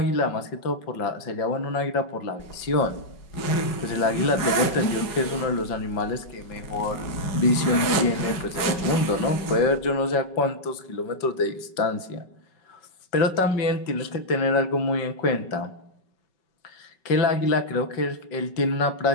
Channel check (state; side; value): late; right; 5.3 ms